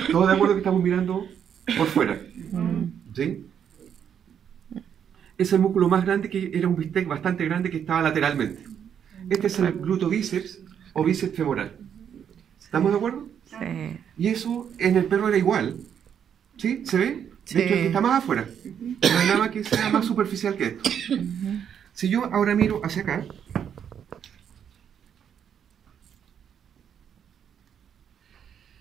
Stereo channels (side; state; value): left; quieter; 8.4 dB